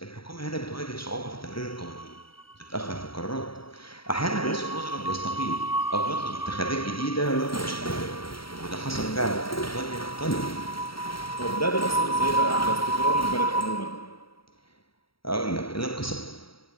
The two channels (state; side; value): late; right; 0.75 ms